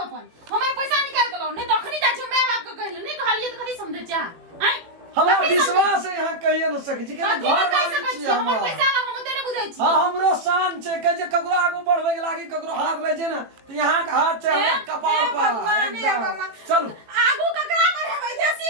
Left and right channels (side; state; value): left; late; 18 ms